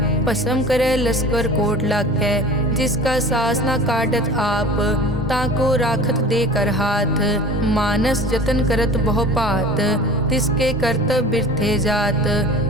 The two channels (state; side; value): normal; both; correlation 0.39